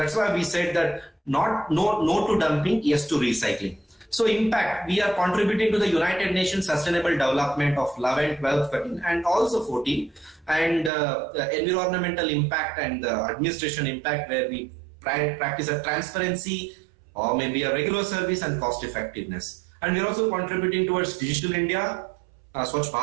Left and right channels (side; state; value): left; drops out; at 10.9 s